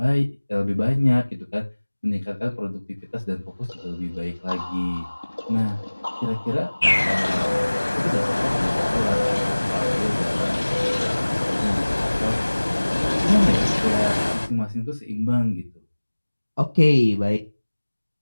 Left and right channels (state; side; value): inverted; both; correlation -1.00